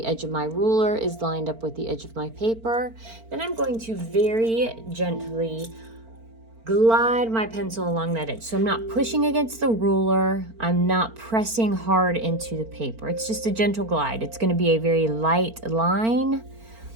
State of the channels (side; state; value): left; late; 4.4 ms